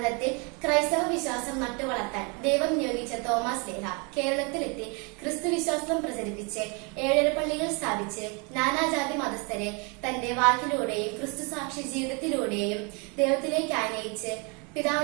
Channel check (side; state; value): left; quieter; 32.3 dB